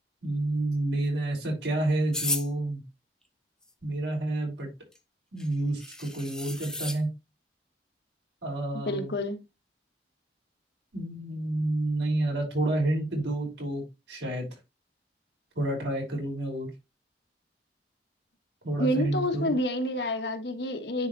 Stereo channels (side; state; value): both; normal; correlation 0.65